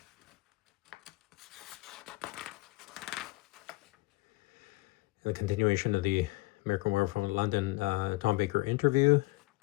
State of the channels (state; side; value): quieter; right; 21.8 dB